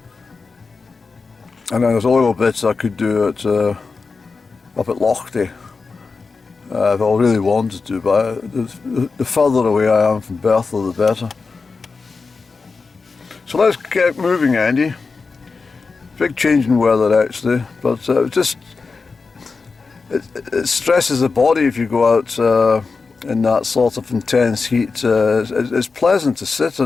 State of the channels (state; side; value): quieter; right; 4.5 dB